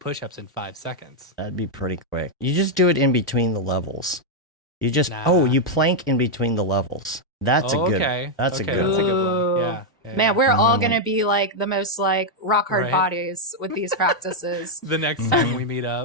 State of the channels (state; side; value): normal; both; correlation -0.01